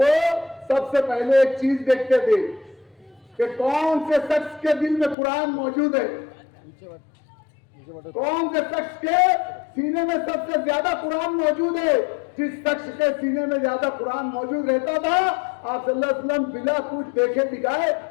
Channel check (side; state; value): right; drops out; at 5.2 s